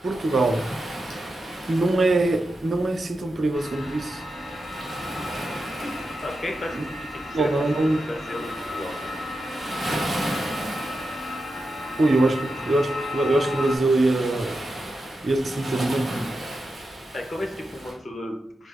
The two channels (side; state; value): both; normal; correlation 0.89